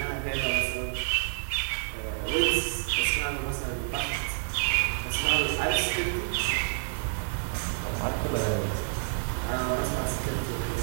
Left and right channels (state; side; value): silent; left; 59 dB below the other